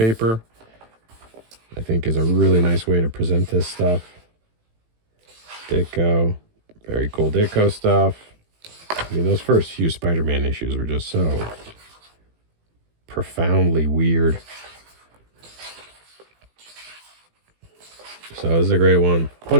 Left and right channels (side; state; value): left; late; 18 ms